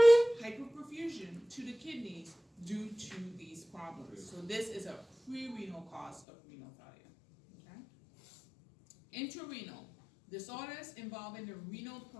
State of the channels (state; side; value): drops out; right; at 6.2 s